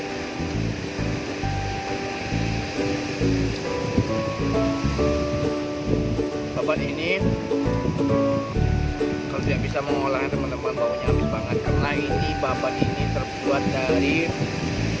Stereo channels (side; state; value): both; identical; correlation 1.00